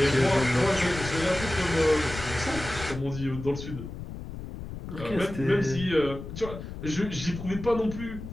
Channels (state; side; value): noise; left; rumble, 10 dB below the sound